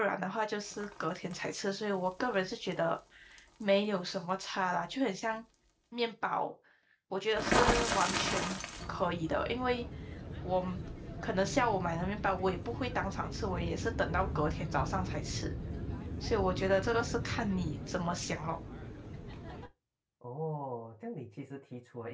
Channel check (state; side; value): identical; both; correlation 1.00